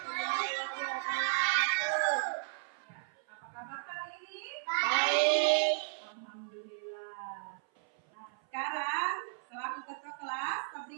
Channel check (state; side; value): silent; left; 55 dB below the other